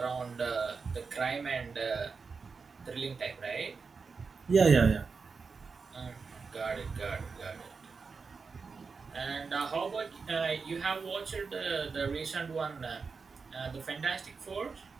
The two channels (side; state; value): left; quieter; 4.9 dB